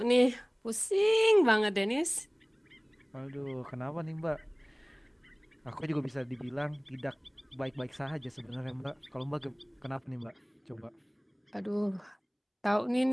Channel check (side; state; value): both; identical; correlation 1.00